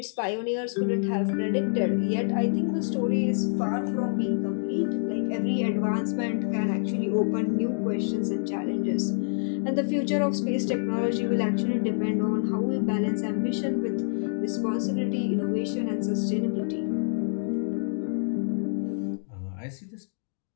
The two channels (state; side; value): silent; right; digital silence